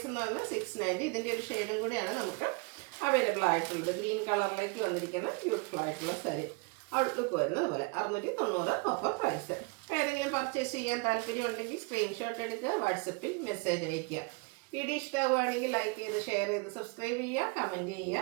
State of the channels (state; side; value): quieter; left; 31.3 dB